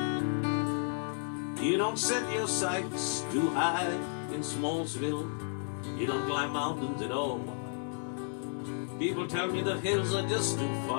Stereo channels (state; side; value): silent; right; digital silence